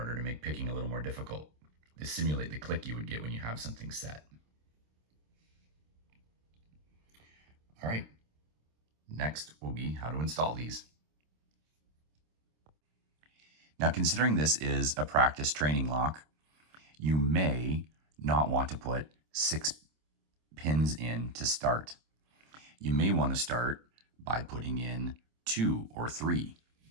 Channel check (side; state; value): left; late; 26 ms